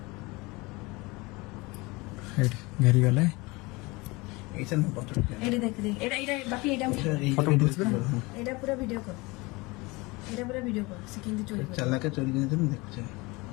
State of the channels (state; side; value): quieter; right; 24.1 dB